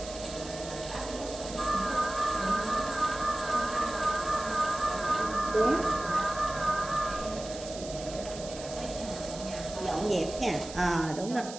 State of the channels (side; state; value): right; noise; hiss, 12 dB below the sound